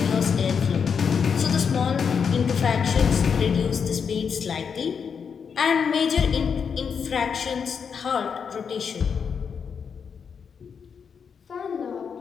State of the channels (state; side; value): quieter; right; 6.5 dB